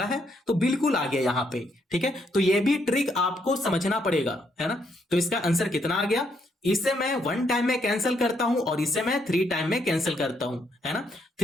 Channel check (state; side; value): normal; both; correlation 0.74